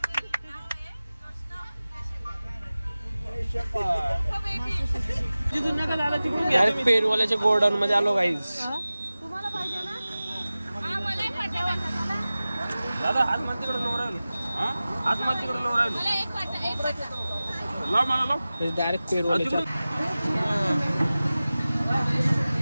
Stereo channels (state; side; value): inverted; both; correlation -0.97